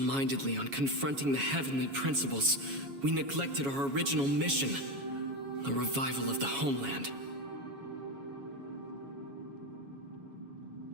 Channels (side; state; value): left; late; 7.2 ms